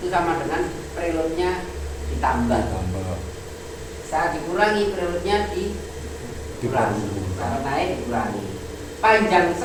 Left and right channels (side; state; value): both; identical; correlation 1.00